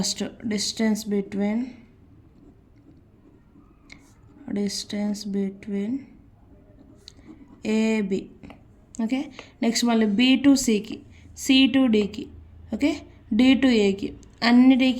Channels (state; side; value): identical; both; correlation 1.00